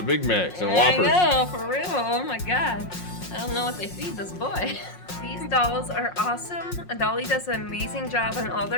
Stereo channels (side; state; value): right; late; 5.5 ms